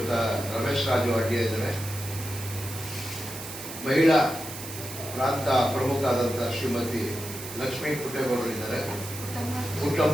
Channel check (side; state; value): right; noise; hiss, 10 dB below the sound